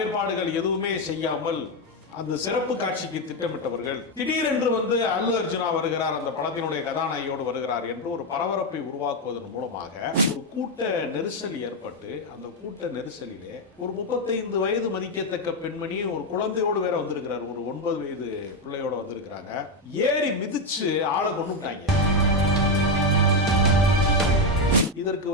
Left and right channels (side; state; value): both; normal; correlation 0.07